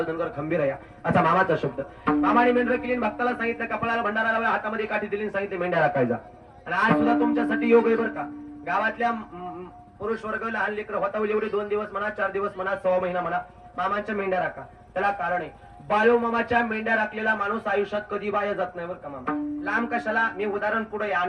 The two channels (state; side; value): identical; both; correlation 1.00